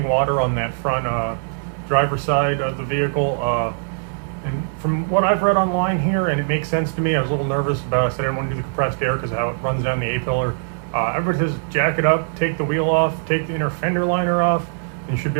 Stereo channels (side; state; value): left; silent; digital silence